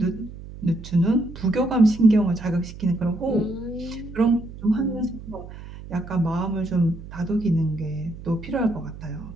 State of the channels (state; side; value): noise; right; hum, 14 dB below the sound